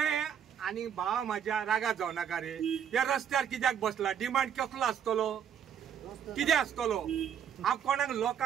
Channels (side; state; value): left; quieter; 8.6 dB